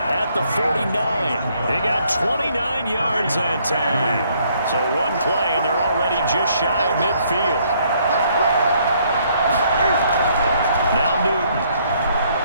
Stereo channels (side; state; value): both; inverted; correlation -0.67